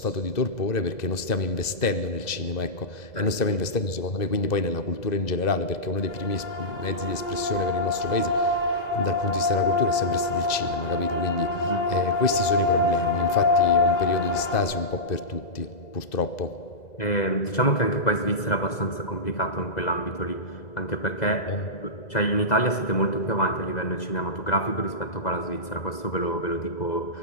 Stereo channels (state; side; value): late; right; 2.0 ms